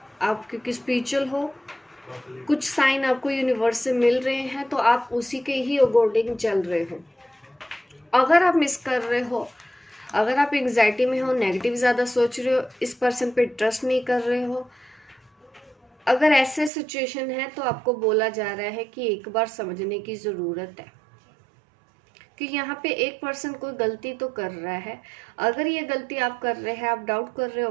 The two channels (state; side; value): drops out; left; at 16.7 s